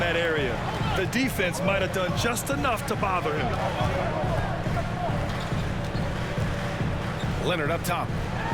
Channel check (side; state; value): both; identical; correlation 1.00